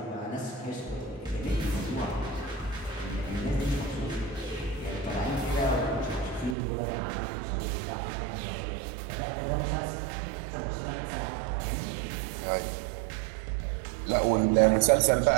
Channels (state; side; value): drops out; left; at 6.6 s